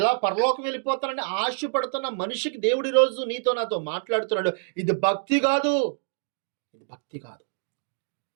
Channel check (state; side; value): silent; left; digital silence